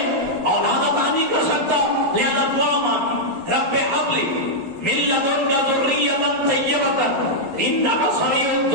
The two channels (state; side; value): late; left; 12 ms